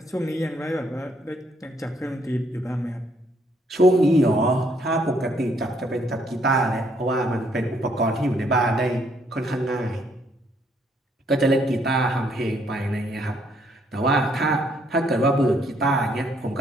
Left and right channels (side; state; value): both; normal; correlation 0.69